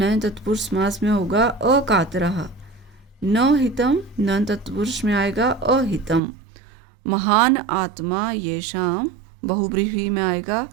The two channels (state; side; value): drops out; left; at 6.2 s